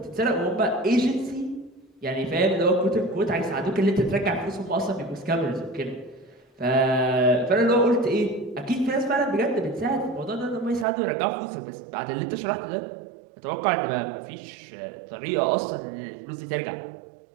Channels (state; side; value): drops out; left; at 10.9 s